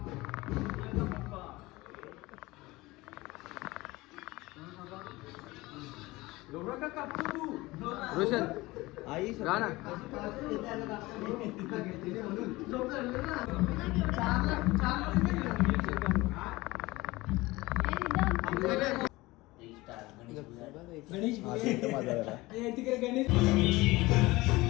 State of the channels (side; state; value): right; quieter; 20.6 dB